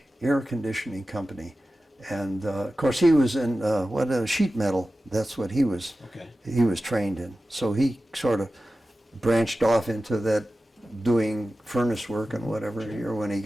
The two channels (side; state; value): both; normal; correlation 0.94